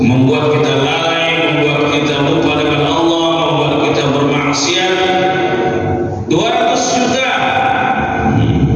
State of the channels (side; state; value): both; identical; correlation 1.00